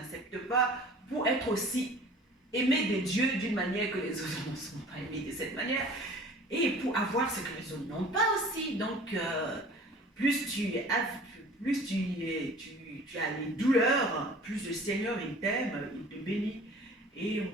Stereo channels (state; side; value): normal; both; correlation 0.46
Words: pas, pour être aussi aimé de Dieu d'une manière que les autres ne sont pas aimés de cette manière, et pour avoir ce que les autres n'ont pas aussi. Donc, plus tu as les douleurs, plus le Seigneur il t'aime, il te bénit. Et